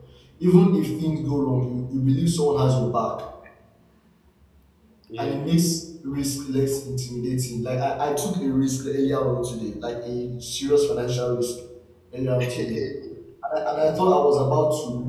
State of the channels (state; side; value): identical; both; correlation 1.00